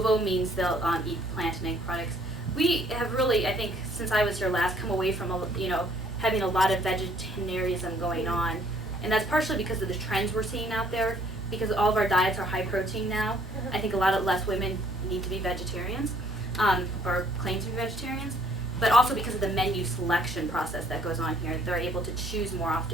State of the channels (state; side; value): normal; both; correlation 0.62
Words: means they'll eat plant and egg products. We have really, I think, since I was here last, come away from having a lot of vegetarianism going on, and that's partially because of the trends we're seeing out there. Because all of our diets are high protein now, I think a lot of less women need to be vegetarians, or claim to be vegetarians. But also because of the menu selection process that goes on here, they're able to choose more